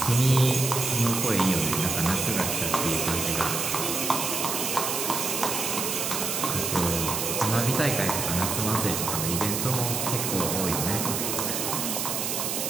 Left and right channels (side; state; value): right; noise; hiss, 1 dB below the sound